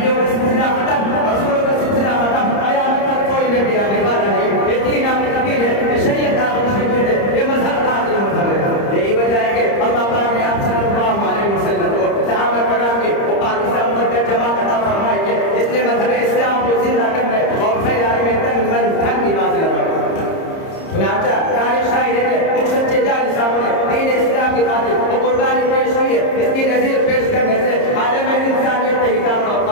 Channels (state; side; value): late; right; 30 ms